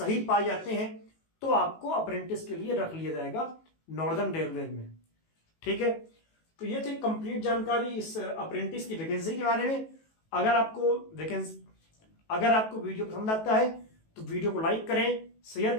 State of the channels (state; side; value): late; right; 18 ms